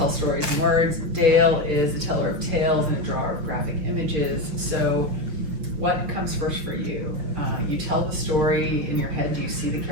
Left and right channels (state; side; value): late; left; 6.2 ms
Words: stories in words. Dale is a teller of tales and a drawer of graphic images. So, what comes first for you? You tell the story in your head. Do you see the